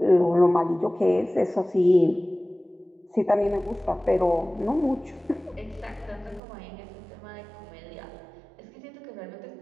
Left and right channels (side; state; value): left; drops out; at 6.4 s